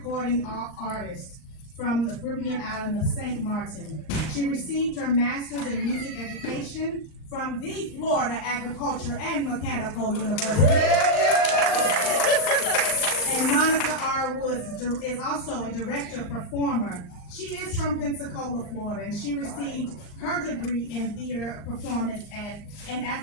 artist from the Caribbean island of St. Martin. She received her master's in music education from the Florida Agriculture and Mechanical University. And Monica R. Woods is also a director performer. She is from Pensacola, Florida, and she received her degree in theater performance and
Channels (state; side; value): late; right; 38 ms